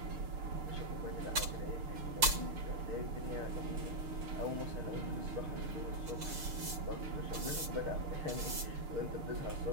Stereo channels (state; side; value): late; left; 6.6 ms